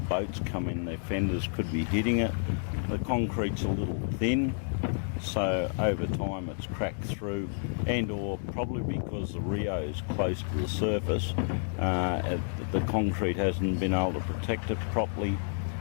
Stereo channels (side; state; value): right; silent; digital silence